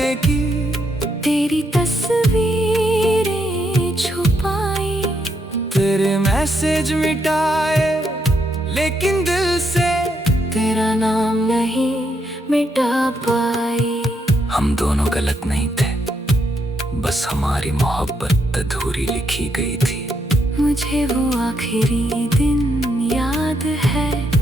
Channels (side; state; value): both; normal; correlation 0.78